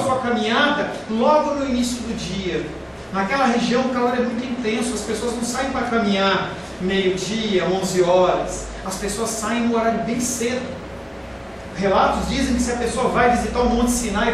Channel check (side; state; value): both; identical; correlation 1.00